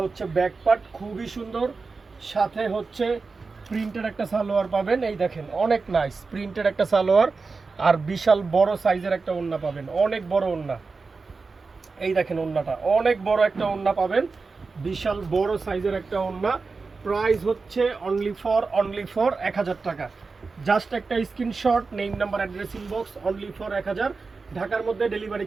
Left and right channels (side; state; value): left; quieter; 4.3 dB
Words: হচ্ছে ব্যাক পার্ট, খুবই সুন্দর। সাথে হচ্ছে প্রিন্টেড একটা সালোয়ার পাবেন। এই দেখেন অনেক নাইস প্রিন্টেড একটা সালোয়ার, আর বিশাল বড় সাইজের একটা ওড়না পাবেন, অনেক বড় ওড়না। এই দেখেন ওড়নাটা, অনেক বড় একটা ওড়না পাবেন, বিশাল বড় সাইজের একটা ওড়না। প্রাইস হচ্ছে অনলি ফর 1000 টাকা। জাস্ট একটা screenshot, name number address inbox, only for 1000। ঢাকার মধ্যে ডেলিভারি